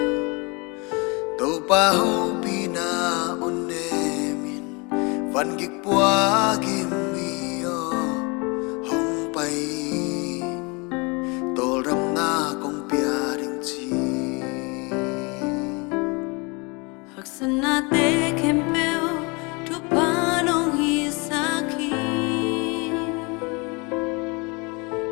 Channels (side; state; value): right; quieter; 28.9 dB